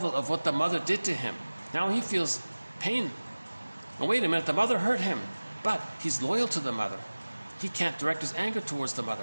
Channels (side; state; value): both; inverted; correlation -1.00